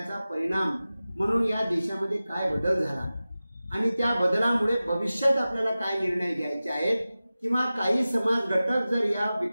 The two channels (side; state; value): both; inverted; correlation -0.96